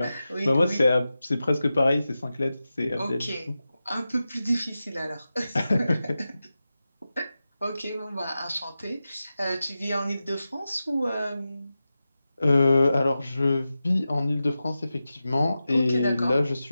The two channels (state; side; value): inverted; both; correlation -0.93